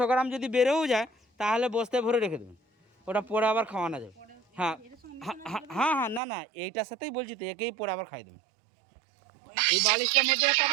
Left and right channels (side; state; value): left; drops out; at 6.2 s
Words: গ্রাম যদি বেড়েও যায় তাহলে বস্তায় ভরে রেখে দেবেন, ওটা পরে আবার খাওয়ানো যাবে। হ্যাঁ হ্যাঁ হ্যাঁ, না এইটার সাথেই বলছি তো, একেই পরে আবার খাই দেবেন। এই বালিশটার মধ্যে একটা